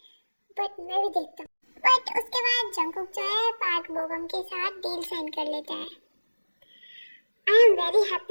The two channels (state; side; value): inverted; both; correlation -1.00